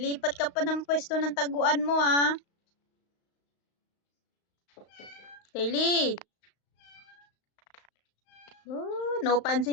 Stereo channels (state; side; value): late; right; 35 ms